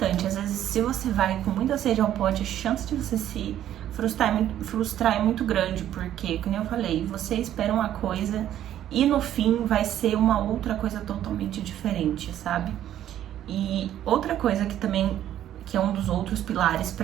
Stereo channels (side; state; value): left; quieter; 11.6 dB